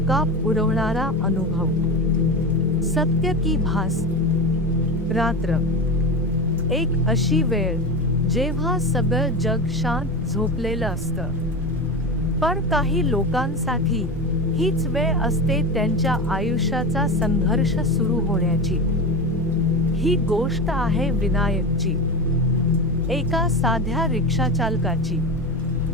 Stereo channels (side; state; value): both; normal; correlation 0.23